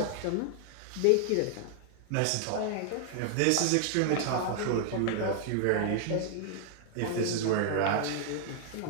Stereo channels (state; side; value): different; both; correlation 0.00